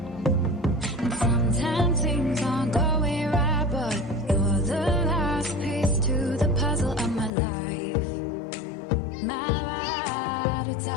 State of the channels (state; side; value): drops out; right; at 7.3 s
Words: And sometimes things aren't going right, but you're the last piece to the puzzle of my life. My ride or